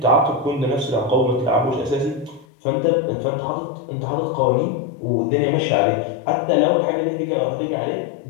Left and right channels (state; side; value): drops out; right; at 2.5 s